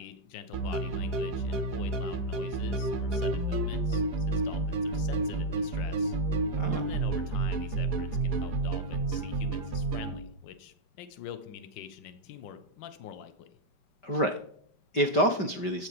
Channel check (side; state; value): right; late; 5.1 ms